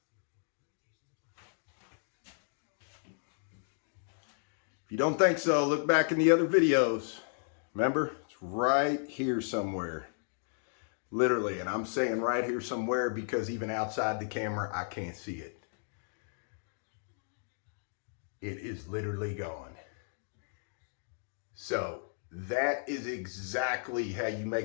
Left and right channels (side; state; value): right; silent; digital silence